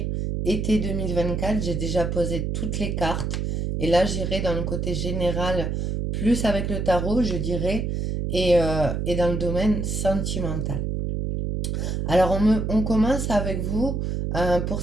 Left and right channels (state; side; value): noise; right; hum, 1 dB below the sound